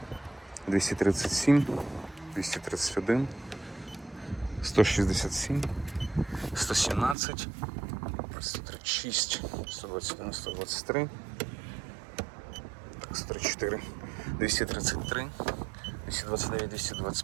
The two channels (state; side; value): drops out; left; at 7.2 s